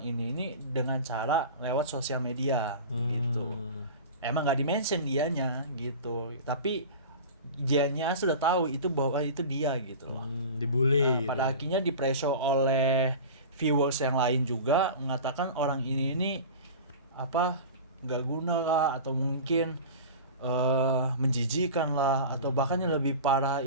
ini dengan cara lewat sosial media gitu. Emang nggak dimention dianya gitu, tapi dianya sudah tahu itu bahwa itu dia gitu loh. Dibully. Pada akhirnya di-pressure oleh viewers yang lain juga mengatakan orang ini apa nggak guna lah, atau mungkin menjijikan lah, atau bahkan yang lebih parah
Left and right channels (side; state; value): both; inverted; correlation -0.33